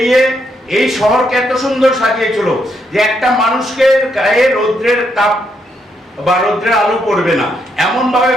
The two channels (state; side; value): normal; both; correlation 0.77